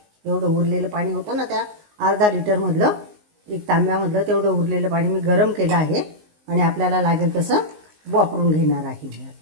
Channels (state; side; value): late; left; 19 ms